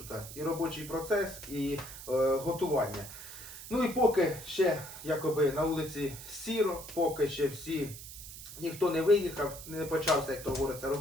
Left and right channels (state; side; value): noise; right; hiss, 13 dB below the sound